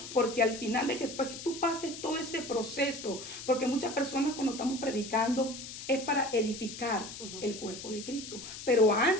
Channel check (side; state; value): left; noise; hiss, 11 dB below the sound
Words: porque al final de que tú pases todo ese proceso, porque muchas personas cuando estamos predicando, es para edificar el cuerpo de Cristo. Pero